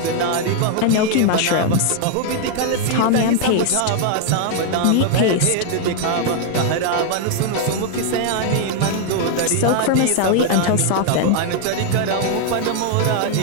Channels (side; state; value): both; different; correlation 0.00